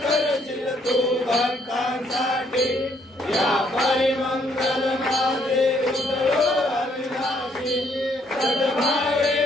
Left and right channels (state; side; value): normal; both; correlation 0.70